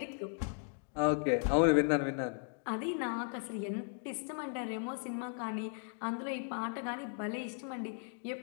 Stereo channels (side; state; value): right; silent; 53 dB below the other